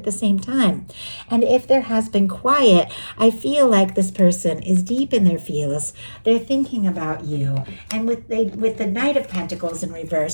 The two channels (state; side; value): inverted; both; correlation -1.00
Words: the same time. And if there has been quiet, I feel like this person is deep in their feels. They're thinking about you. And with the Knight of Pentacles in